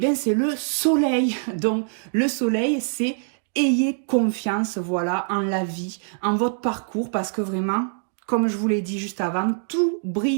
c'est le soleil. Donc, le soleil, c'est ayez confiance, voilà, en la vie, en votre parcours, parce que vraiment... Comme je vous l'ai dit juste avant, tout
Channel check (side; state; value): left; silent; digital silence